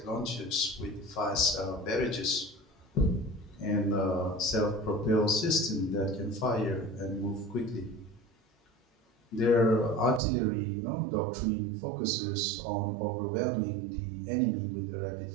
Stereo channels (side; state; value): left; drops out; at 10.2 s